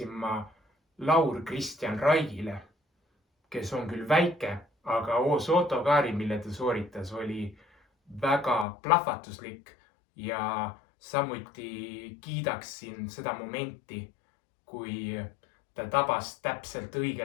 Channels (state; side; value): drops out; right; at 8.7 s